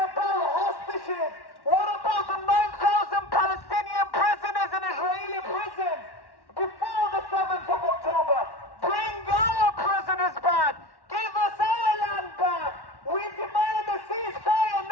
hostages. What about the 9,000 Palestinian prisoners in Israeli prisons before the 7th of October? Bring our prisoners back. Give us our land back. We demand a ceasefire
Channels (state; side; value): late; right; 1.1 ms